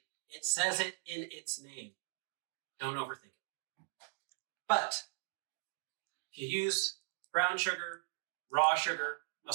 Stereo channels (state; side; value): silent; left; digital silence